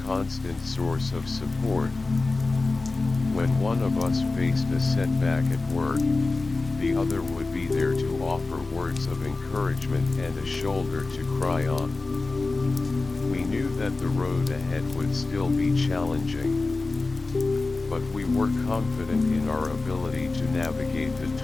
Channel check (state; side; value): quieter; right; 3.5 dB